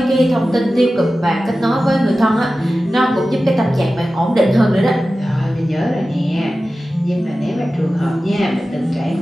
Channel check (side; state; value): both; normal; correlation 0.95